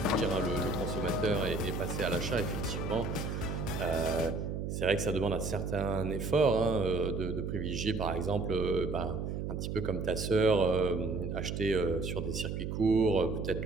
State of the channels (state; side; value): noise; right; hum, 3 dB below the sound